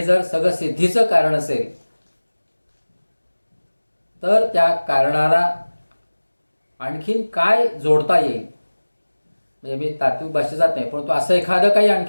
जर सगळं सिद्धीचं कारण असेल तर त्या कारणाला आणखीन काय जोडता येईल, म्हणजे मी तात्विक भाषेत जात नाही, परंतु असं एखादं काही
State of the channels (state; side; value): inverted; both; correlation -1.00